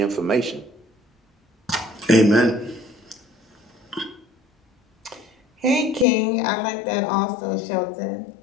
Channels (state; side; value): drops out; right; at 6.1 s